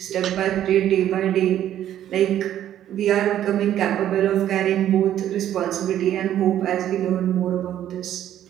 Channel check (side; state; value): left; quieter; 11.4 dB